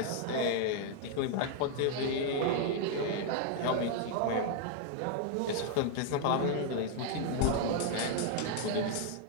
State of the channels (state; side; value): different; both; correlation 0.00